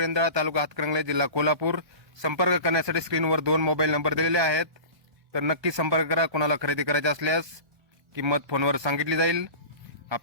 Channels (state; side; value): late; left; 1.2 ms